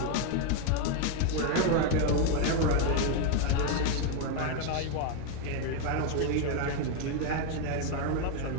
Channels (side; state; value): both; different; correlation 0.01